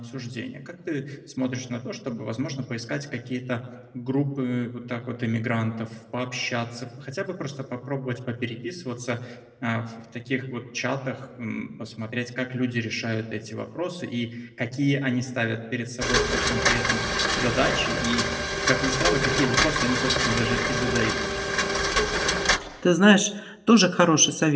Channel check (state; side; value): identical; both; correlation 1.00